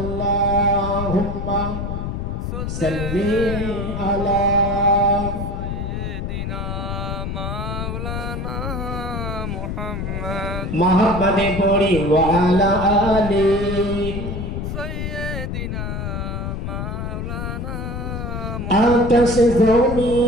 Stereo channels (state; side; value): noise; left; rumble, 4 dB below the sound